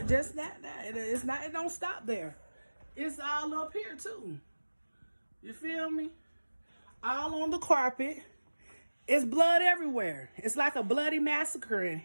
just that. It's not. It don't stop there. It's all up here too. You feel me? All on the carpet. It's blood everywhere. It's like a bloody massacre in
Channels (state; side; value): inverted; both; correlation -1.00